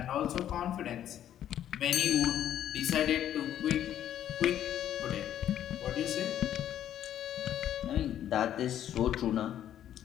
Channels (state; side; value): quieter; right; 10.9 dB